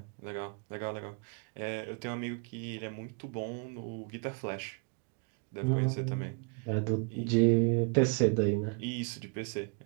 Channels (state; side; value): quieter; left; 36.4 dB